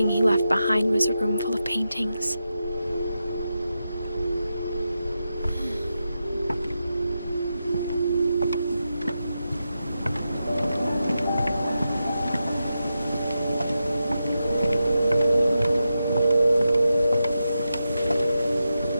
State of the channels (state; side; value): inverted; both; correlation -0.89